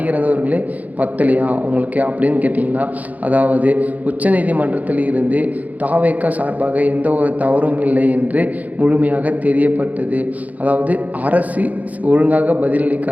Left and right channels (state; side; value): late; left; 0.076 ms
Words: இறந்தவர்களே பத்தலையா உங்களுக்கு அப்படின்னு கேட்டிங்கன்னா, அதாவது உச்சநீதிமன்றத்தில் இருந்து தாவேக சார்பாக எந்த ஒரு தவறும் இல்லை என்று முழுமையாக தெரியப்பட்டது. அதாவது அரசு ஒழுங்காக